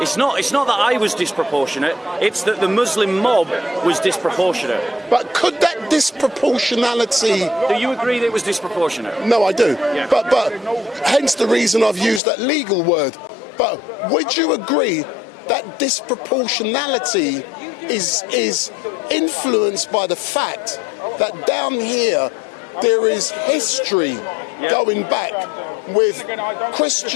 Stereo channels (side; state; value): right; drops out; at 12.2 s